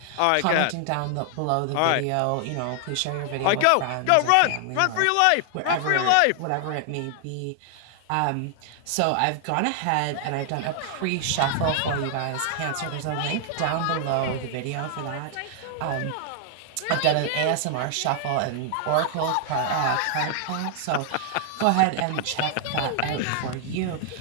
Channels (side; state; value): both; different; correlation 0.00